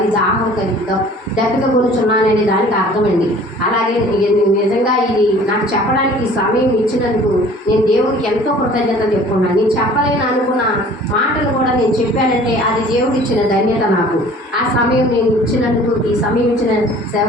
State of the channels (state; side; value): normal; both; correlation 0.49